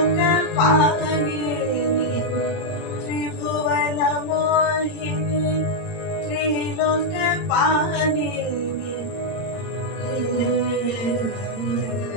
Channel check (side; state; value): right; late; 30 ms